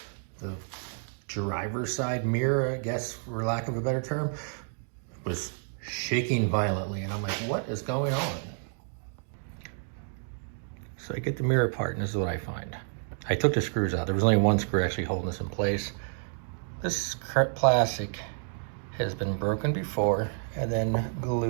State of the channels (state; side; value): silent; left; 58 dB below the other